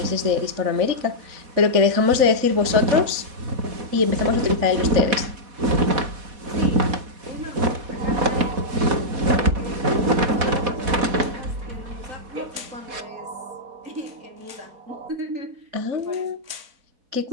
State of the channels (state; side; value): late; left; 4.1 ms